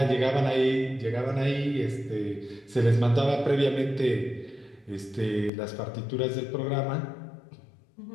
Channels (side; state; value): right; drops out; at 5.5 s